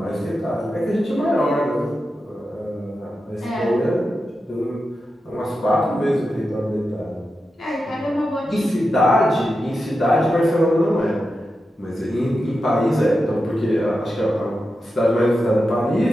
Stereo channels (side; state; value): both; normal; correlation 0.90